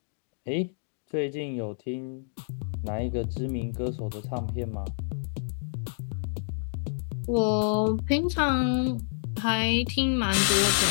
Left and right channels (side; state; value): right; silent; digital silence